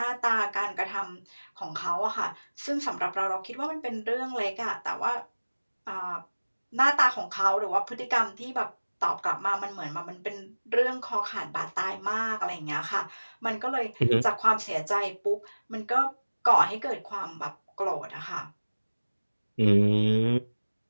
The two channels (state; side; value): inverted; both; correlation -1.00